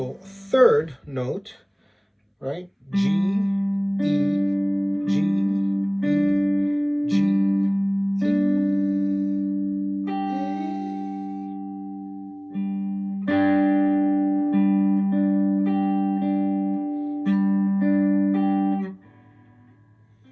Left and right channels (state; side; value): identical; both; correlation 1.00